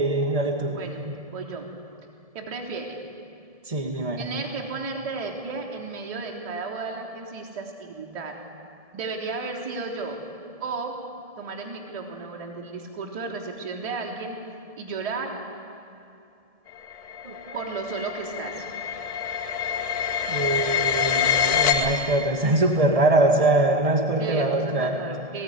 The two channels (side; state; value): left; late; 1.7 ms